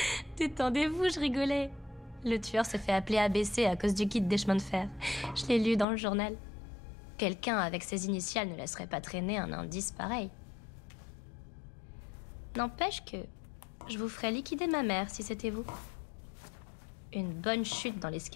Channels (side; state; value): right; drops out; at 5.9 s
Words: Détendez-vous, je rigolais. Le tueur se fait appeler ABC à cause du guide des chemins de fer. Je l'ai lu dans le journal. Quelqu'un avec ses initiales ne laisserait pas traîner un indice pareil. N'empêche que je vous ferais liquider ma mère si c'était vous. Une bonne chute dans